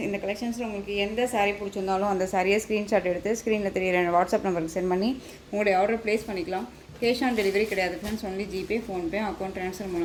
இந்த கலெக்ஷன்ஸில் உங்களுக்கு எந்த சாரீ பிடிச்சிருந்தாலும் அந்த சாரியை ஸ்க்ரீன்ஷாட் எடுத்து ஸ்க்ரீனில் தெரியிற வாட்ஸ்அப் நம்பருக்கு சென்ட் பண்ணி உங்களுடைய ஆர்டர் ப்ளேஸ் பண்ணிக்கலாம். கேஷ் ஆன் டெலிவரி கிடையாது friends, only GPay, PhonePe, account transfer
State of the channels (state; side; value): identical; both; correlation 1.00